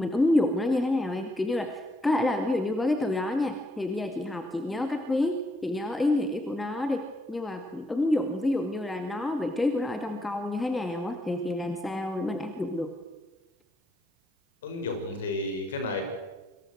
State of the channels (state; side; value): normal; both; correlation 0.76